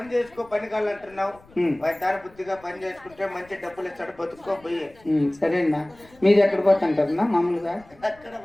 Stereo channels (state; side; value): noise; left; rumble, 27 dB below the sound